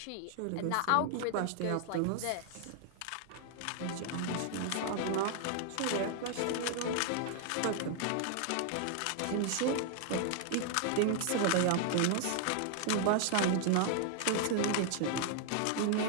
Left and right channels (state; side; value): different; both; correlation 0.00